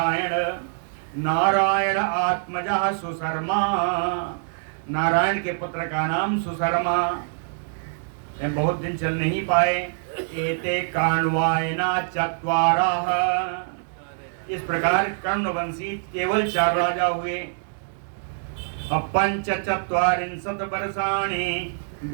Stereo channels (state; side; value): silent; left; digital silence